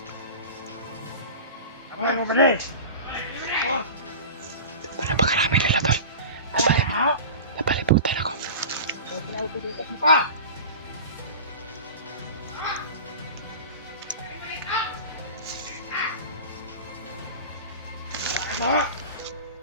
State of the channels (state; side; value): inverted; both; correlation -0.33